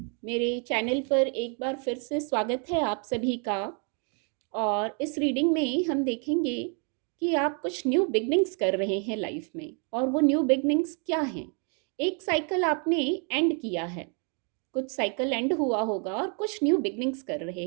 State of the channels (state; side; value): quieter; left; 39.2 dB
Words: मेरे चैनल पर एक बार फिर से स्वागत है आप सभी का। और इस रीडिंग में हम देखेंगे कि आप कुछ न्यू बिगनिंग्स कर रहे हैं लाइफ में, और वो न्यू बिगनिंग्स क्या हैं। एक साइकिल आपने एंड किया है, कुछ साइकिल एंड हुआ होगा और कुछ न्यू बिगनिंग्स कर